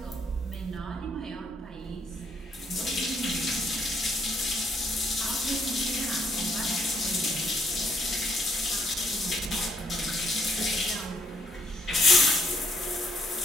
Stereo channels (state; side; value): normal; both; correlation 0.72